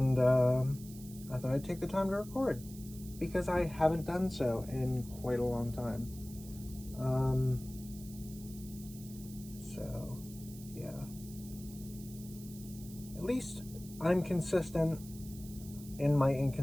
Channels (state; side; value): noise; right; hiss, 17 dB below the sound